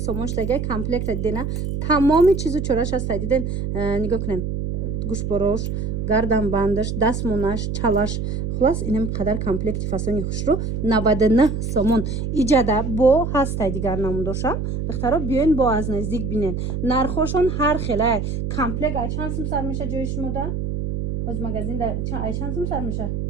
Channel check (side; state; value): right; noise; hum, 2 dB below the sound